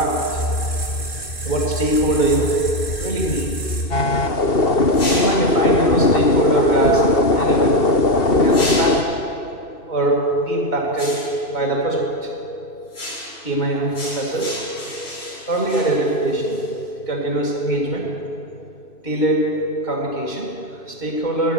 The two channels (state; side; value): late; right; 2.6 ms